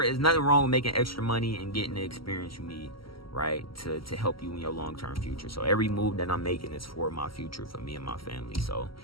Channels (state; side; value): late; right; 0.75 ms